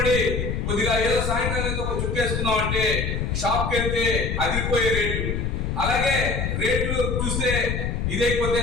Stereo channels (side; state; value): left; noise; rumble, 1 dB below the sound